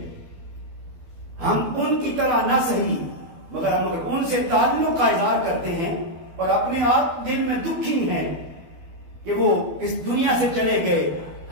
ہم ان کی طرح نہ صحیح مگر ہم اگر ان سے تعلق کا اظہار کرتے ہیں اور اپنے آپ دل میں دکھی ہیں کہ وہ اس دنیا سے چلے گئے،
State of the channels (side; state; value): left; late; 12 ms